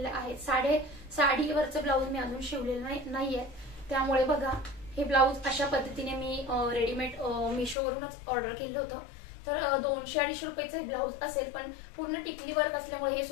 आहे। साडीवरचं ब्लाऊज मी अजून शिवलेलं नाहीये, त्यामुळे बघा हे ब्लाऊज अशा पद्धतीने मी रेडीमेड मीशोवरूनच ऑर्डर केलं होतं। तर 200-250 रुपयाचं हे ब्लाऊज असेल, पण पूर्ण टिकली वर्क असल्यामुळे हे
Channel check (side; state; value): right; drops out; at 7.8 s